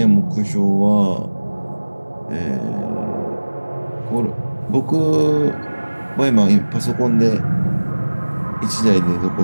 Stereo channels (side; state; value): both; inverted; correlation -1.00